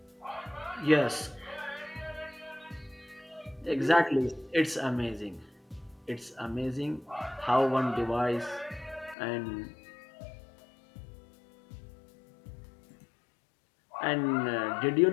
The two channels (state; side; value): drops out; right; at 9.2 s